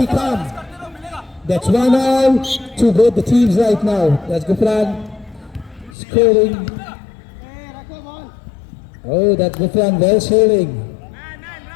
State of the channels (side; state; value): right; drops out; at 6.0 s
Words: calm. That's 1-1 to both the teams right now. That's Gufran scoring. Oh, that's Gufran well shielding.